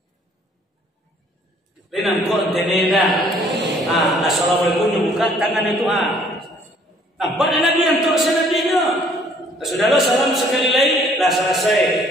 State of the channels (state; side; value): normal; both; correlation 0.60